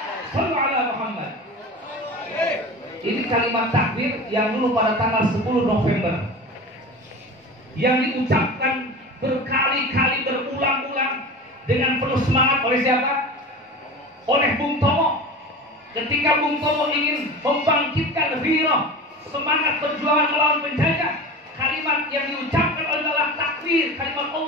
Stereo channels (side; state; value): both; normal; correlation 0.32